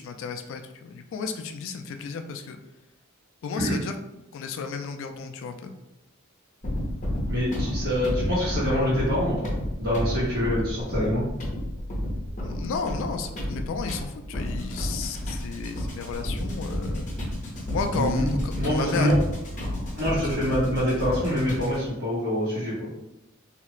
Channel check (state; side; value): normal; both; correlation 0.58